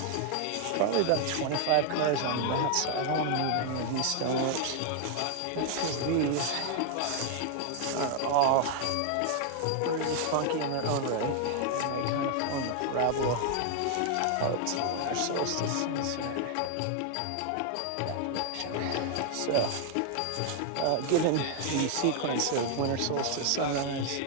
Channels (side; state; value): both; different; correlation 0.00